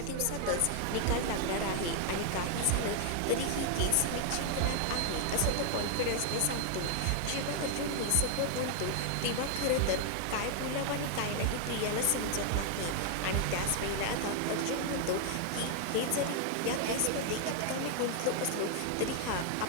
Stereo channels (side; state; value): both; different; correlation 0.00